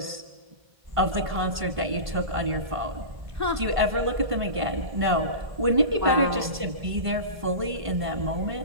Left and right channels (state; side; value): late; left; 1.5 ms